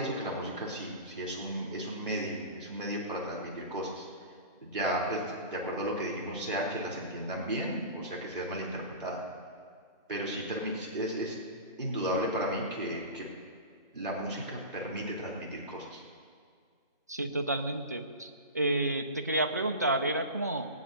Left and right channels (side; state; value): both; inverted; correlation -0.31